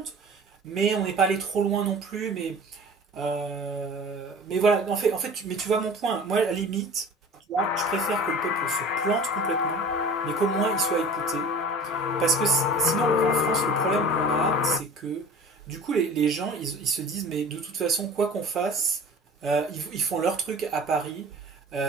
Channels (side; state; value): both; normal; correlation 0.42